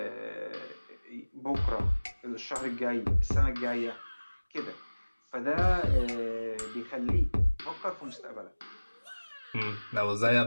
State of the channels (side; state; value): both; inverted; correlation -1.00